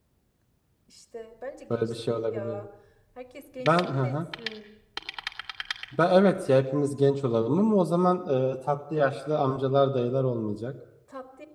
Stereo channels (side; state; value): both; identical; correlation 1.00